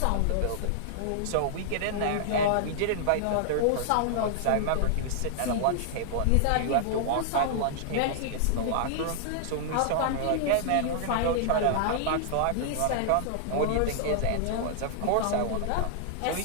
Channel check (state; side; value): different; both; correlation -0.01